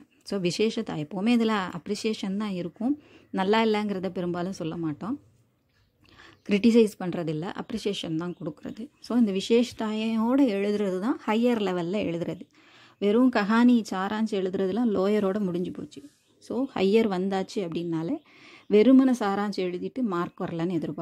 ஸோ விசேஷத்தா எப்போவுமே இதில் அப்ரிசியேஷன் தான் இருக்கும், நல்லா இல்லைங்கிறத பெரும்பாலும் சொல்ல மாட்டோம், கிரிட்டிசைஸ் பண்ணுறதில்ல, அப்ரிசியேஷன் தான் கொடுக்குறது. ஸோ இந்த விசேஷத்தாயோடு எழுதுறது தான் ஹையர் லெவலில் எழுதுறது. வெறும் கஹானி சாராஞ்சி எழுதுறதுலாம் லோயரோடு முடிஞ்சு போச்சு. ஸோ ஹையர் வந்தாச்சு அப்படின்னாலே வெறுமனை சாராஞ்சி எழுதிட்டு மார்க் வரலன்னு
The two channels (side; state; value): both; identical; correlation 1.00